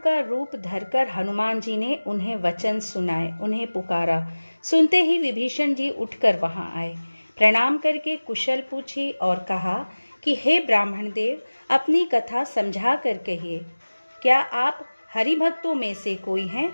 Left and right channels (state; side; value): inverted; both; correlation -1.00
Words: रूप धरकर हनुमान जी ने उन्हें वचन सुनाए, उन्हें पुकारा। सुनते ही विभीषण जी उठकर वहां आए, प्रणाम करके कुशल पूछी और कहा कि हे ब्राह्मण देव, अपनी कथा समझा कर कहिए। क्या आप हरि भक्तों में से कोई हैं?